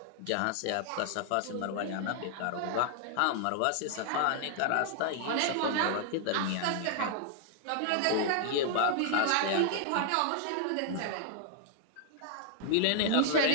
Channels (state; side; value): different; both; correlation -0.01